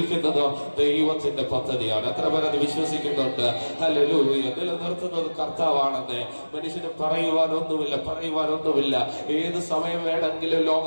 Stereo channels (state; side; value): inverted; both; correlation -1.00